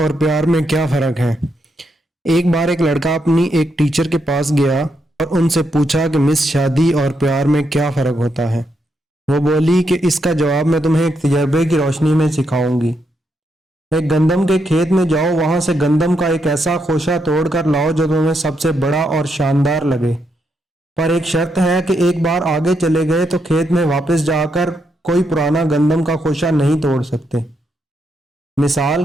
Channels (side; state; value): both; normal; correlation 0.80